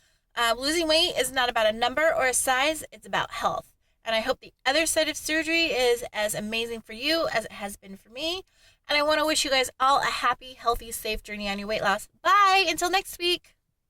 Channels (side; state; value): both; identical; correlation 1.00